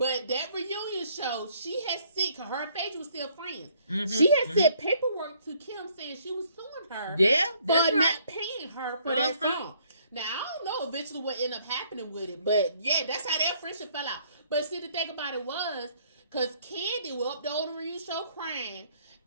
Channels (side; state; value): both; inverted; correlation -0.64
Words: that reunion show, she had sent, because her and Phaedra was still friends. She had sent paperwork to Kim saying she was suing her for not paying her for that song. Now, I don't know eventually what ended up happening with it, but yeah, that's how their friendship fell out. But see, the thing about it was, because Candy was up there on the reunion show crying